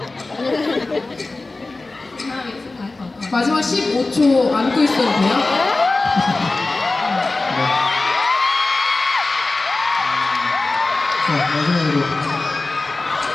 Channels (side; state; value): right; quieter; 3.3 dB